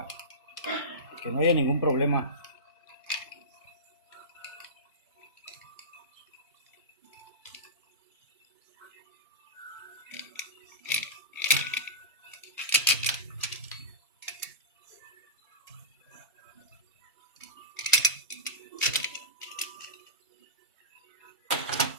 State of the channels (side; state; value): both; normal; correlation -0.19